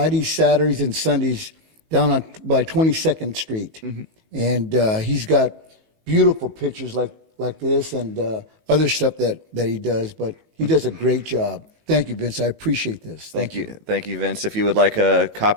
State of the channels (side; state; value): left; late; 19 ms